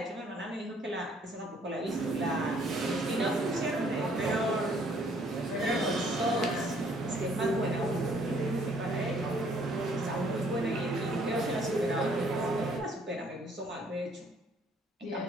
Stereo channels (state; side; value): normal; both; correlation 0.63